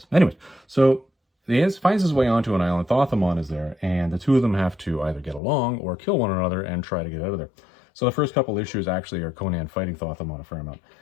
this. Anyways, so he finds his way onto an island. Thoth-Amon is there, and the two of them have to either get along or kill one another and try to get out of there. So the first couple issues actually are Conan fighting Thoth-Amon a fair amount.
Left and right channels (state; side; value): drops out; right; at 5.4 s